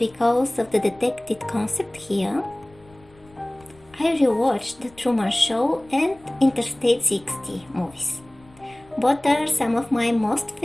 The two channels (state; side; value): noise; left; rumble, 27 dB below the sound